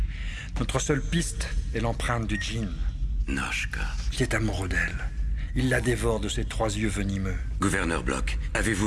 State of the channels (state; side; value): identical; both; correlation 1.00